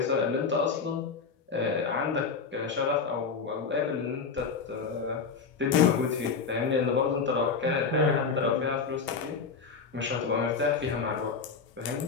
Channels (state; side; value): quieter; right; 5.3 dB